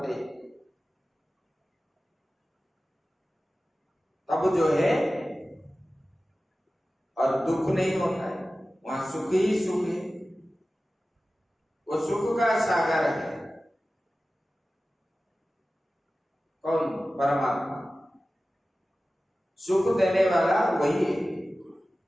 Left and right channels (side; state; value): both; normal; correlation 0.96